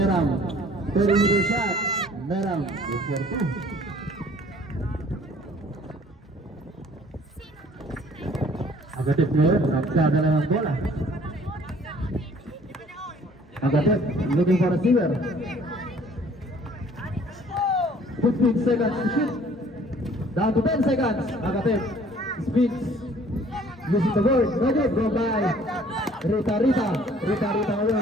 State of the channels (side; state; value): both; normal; correlation 0.55